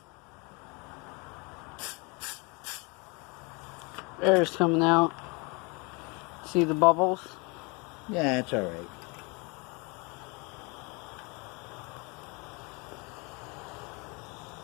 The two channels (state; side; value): quieter; right; 29.4 dB